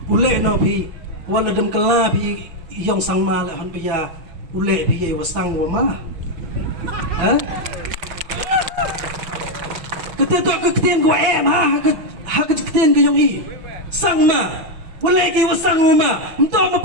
ule no phi wala dem kala phi yong sangma le han pya ule phi ye wasang wa ma ha kete to ketien ko em ha ketien ko yong i sangma wala ki wasang uma mto mo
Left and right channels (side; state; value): left; late; 6.0 ms